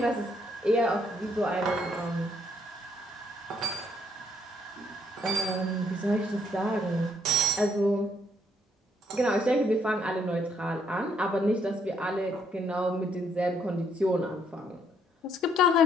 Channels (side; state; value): both; normal; correlation 0.68